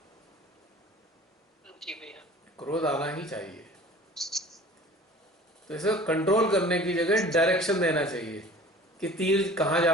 जी भैया। क्रोध आना ही चाहिए, तो इसे कंट्रोल करने की जगह डायरेक्शन देना चाहिए कि तीर कहाँ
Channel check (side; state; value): both; normal; correlation 0.45